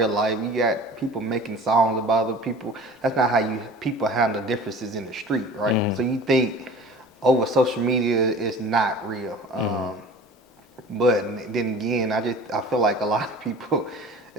life. You got people making songs about other people. That's not how you people handle differences in the street, right? Mm-hmm. So you think over social media is not real. Mm-hmm. But then again, I feel like a lot of people,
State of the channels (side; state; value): both; normal; correlation 0.42